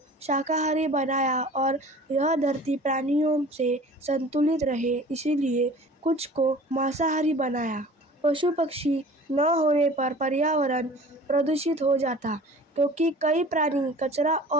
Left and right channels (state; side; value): normal; both; correlation 0.44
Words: शाकाहारी बनाया, और यह धरती प्राणियों से संतुलित रहे, इसीलिए कुछ को मांसाहारी बनाया। पशु पक्षी न होने पर पर्यावरण प्रदूषित हो जाता, क्योंकि कई प्राणी कचरा